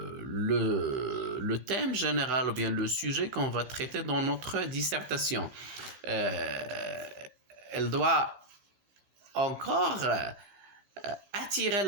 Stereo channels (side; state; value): left; late; 16 ms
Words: thème général ou bien le sujet qu'on va traiter dans notre dissertation. Euh, Elle doit encore attirer